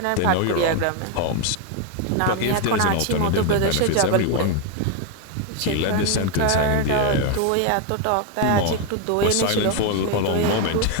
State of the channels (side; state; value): both; different; correlation 0.01